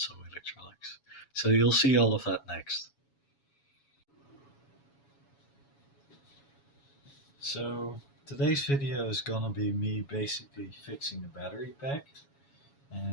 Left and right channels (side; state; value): right; late; 7.2 ms